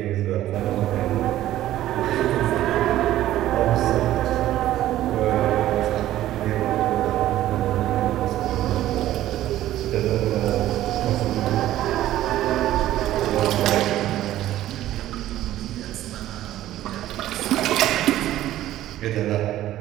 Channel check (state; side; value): quieter; left; 13.8 dB